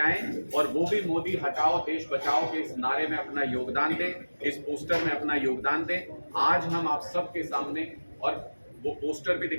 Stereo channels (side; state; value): both; inverted; correlation -1.00